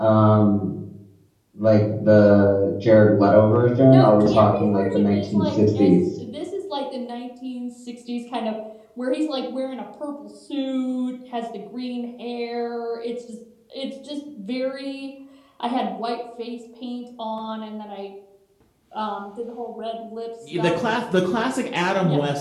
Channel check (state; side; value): identical; both; correlation 1.00